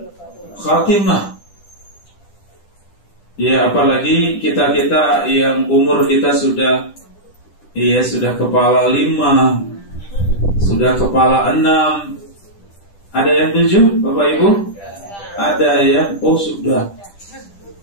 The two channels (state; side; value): late; right; 10 ms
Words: khatimah. Ya, apalagi kita yang umur kita sudah kepala 5, sudah kepala 6. Ada yang 7, Bapak Ibu? Ada ya? Oh sudah.